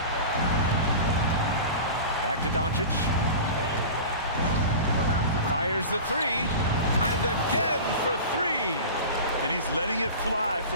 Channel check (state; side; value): inverted; both; correlation -0.33